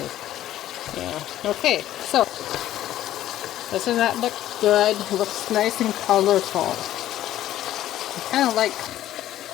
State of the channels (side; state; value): right; quieter; 13.2 dB